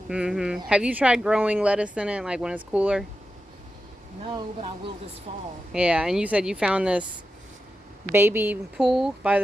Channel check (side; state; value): both; normal; correlation 0.90